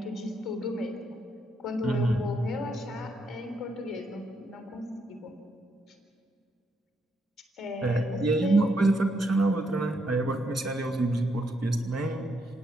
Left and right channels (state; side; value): normal; both; correlation 0.77